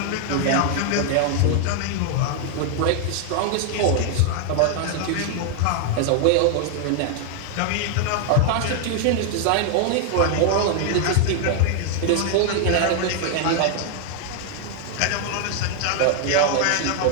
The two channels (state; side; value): different; both; correlation 0.00